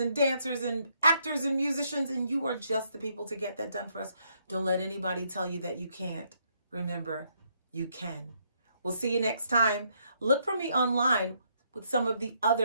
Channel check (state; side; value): inverted; both; correlation -0.73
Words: dancers and actors and musicians, and you are just the people to get that done for us. Don't let anybody tell you that you can't. Remember, you can. We'll see you next time. Look for me online with some of the